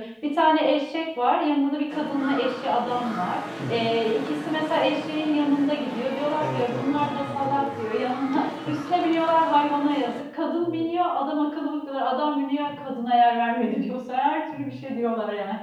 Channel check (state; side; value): identical; both; correlation 1.00